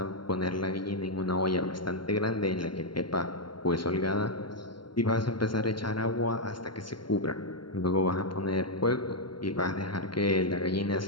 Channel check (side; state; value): right; late; 0.72 ms